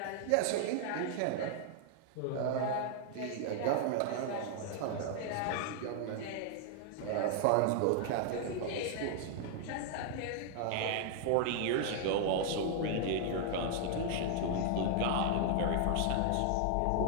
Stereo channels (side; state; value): both; different; correlation 0.00